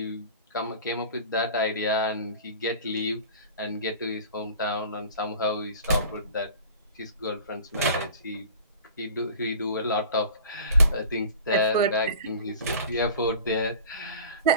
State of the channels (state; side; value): inverted; both; correlation -0.41